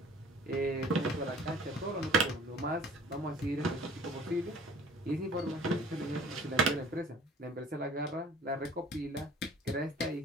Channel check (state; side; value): normal; both; correlation 0.50